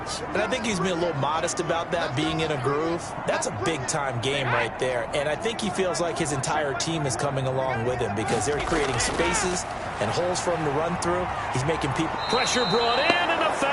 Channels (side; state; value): both; identical; correlation 1.00